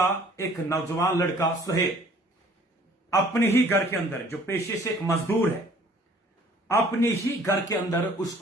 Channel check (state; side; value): normal; both; correlation 0.55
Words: एक नौजवान लड़का सुहेल अपने ही घर के अंदर, जो पेशे से एक मजदूर है, अपने ही घर के अंदर